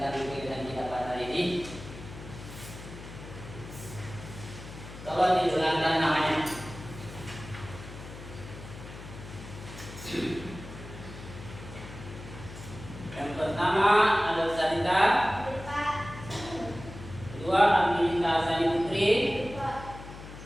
kegiatan kita pada hari ini, tolong diulangkan namanya. Yang pertama ada Sanita, kedua Aminita Sani Putri,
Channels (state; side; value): noise; left; hum, 13 dB below the sound